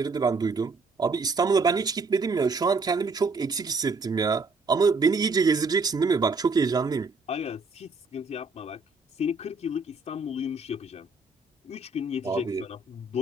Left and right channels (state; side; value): quieter; left; 3.6 dB